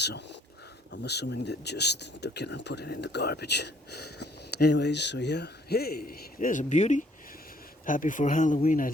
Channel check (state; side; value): normal; both; correlation 0.63